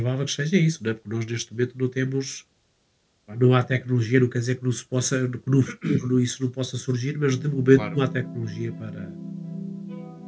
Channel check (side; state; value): both; identical; correlation 1.00